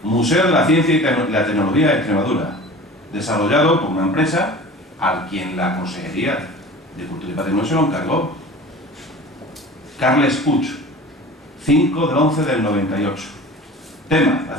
Museo de la Ciencia y la Tecnología de Extremadura, desarrollado por una empresa a quien la Consejería de Cultura y Patrimonio se lo encargó. Carles Puig, 5/11/98. Tema, la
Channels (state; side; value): normal; both; correlation 0.39